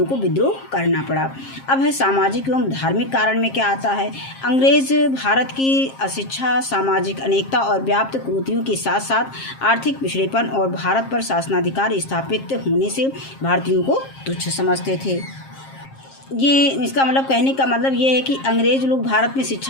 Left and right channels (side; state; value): right; late; 7.5 ms